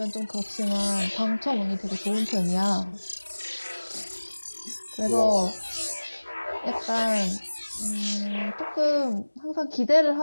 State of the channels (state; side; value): inverted; both; correlation -1.00